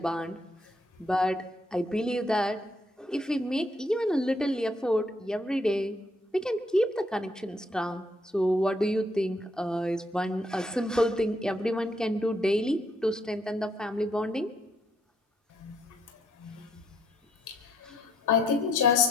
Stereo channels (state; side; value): normal; both; correlation 0.71